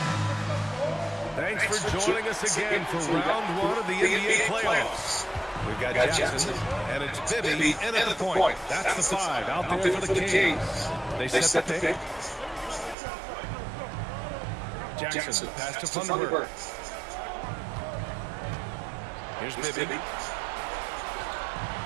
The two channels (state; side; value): drops out; left; at 13.0 s